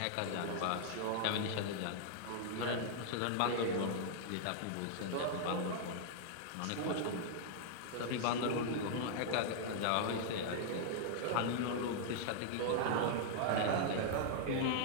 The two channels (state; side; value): different; both; correlation -0.01